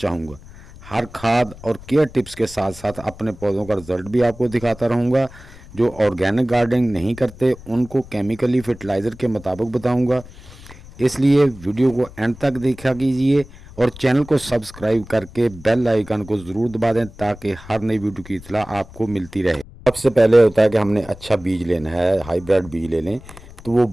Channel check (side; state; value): left; noise; rumble, 19 dB below the sound